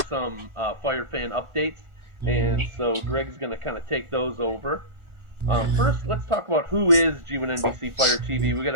Fire fan updates. And so Greg's going to kind of take those over. First, let's talk about who is G1NBC Fire TV. We got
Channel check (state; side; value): late; left; 1.4 ms